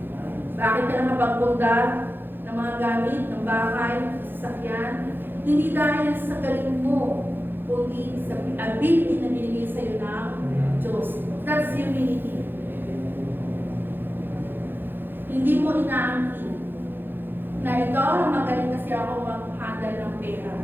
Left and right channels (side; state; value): left; late; 0.098 ms